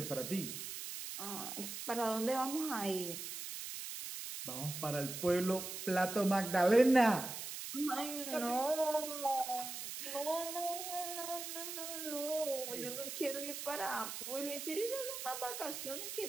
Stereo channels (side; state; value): right; noise; hiss, 7 dB below the sound